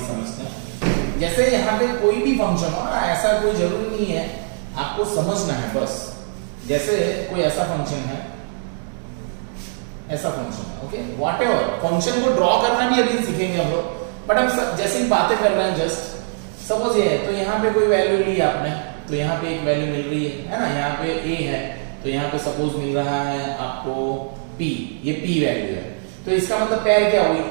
समझते हैं, जैसे यहाँ पे कोई भी फंक्शन हो ना, ऐसा कोई जरूरी नहीं है, आपको समझना है बस। जैसे कोई ऐसा फंक्शन है, ऐसा फंक्शन है, ओके, व्हाटएवर, फंक्शन को ड्रॉ करना भी अभी सीखेंगे हम लोग, बट हम जैसे ही बातें कर रहे हैं, जस्ट सपोज ये है, तो यहाँ पे कोई वैल्यू ली आपने, तो यहाँ पे एक वैल्यू मिल रही है ना, यहाँ पे a है, तो यहाँ पे सपोज मिल रहा है आपको p, ये p वैल्यू है, तो इसका मतलब पेयर क्या हुई,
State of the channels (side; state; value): left; silent; digital silence